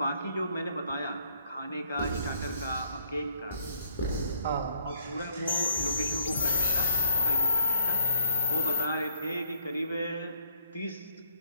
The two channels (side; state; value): both; inverted; correlation -0.69